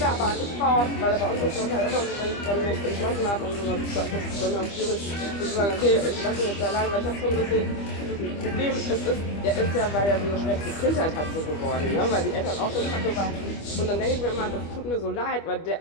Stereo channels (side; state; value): right; late; 25 ms